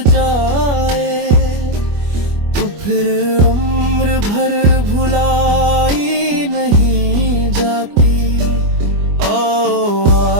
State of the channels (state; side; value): late; left; 24 ms